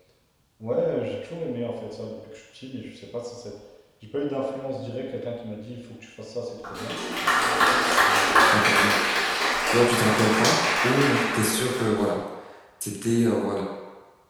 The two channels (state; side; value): identical; both; correlation 1.00